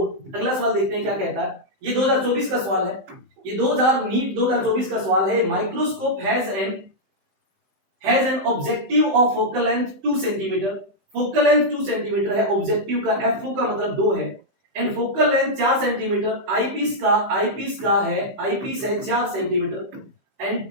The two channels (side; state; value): left; late; 15 ms